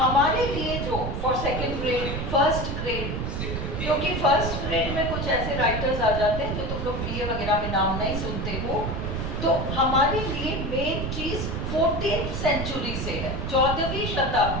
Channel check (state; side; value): noise; right; rumble, 3 dB below the sound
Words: लिए जो for second grade, first grade, क्योंकि फर्स्ट ग्रेड में कुछ ऐसे राइटर्स आ जाते हैं जो तुम लोग BA वगैरह में नाम नहीं सुनते हो, तो हमारे लिए मेन चीज 14th सेंचुरी से है, 14वीं